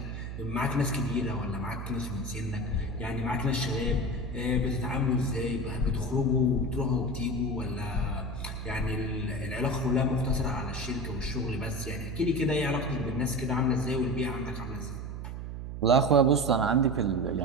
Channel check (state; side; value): noise; right; hum, 7 dB below the sound